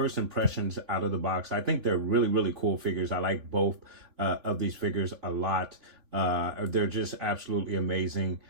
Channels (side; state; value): left; late; 3.6 ms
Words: impressions out of the box, I think they're really cool figures. I like both of these figures a lot. They're just absolutely amazing.